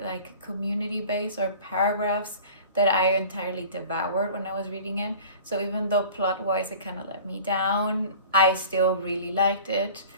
community-based or paragraphs that I entirely devoured when I was reading it. So even though plot-wise it kind of let me down, I still really liked it.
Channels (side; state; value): both; inverted; correlation -0.43